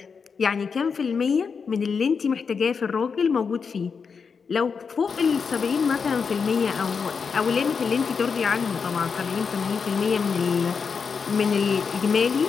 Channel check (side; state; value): right; quieter; 5.7 dB